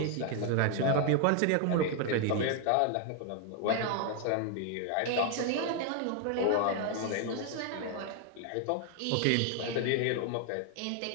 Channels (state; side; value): different; both; correlation 0.00